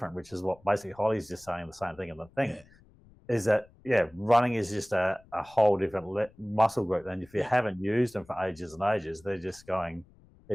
which is what basically Holly's just saying the same thing. And the thing is that, running is just a whole different muscle group. And if you haven't used them for ages and ages, they're just going,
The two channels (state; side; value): noise; left; rumble, 27 dB below the sound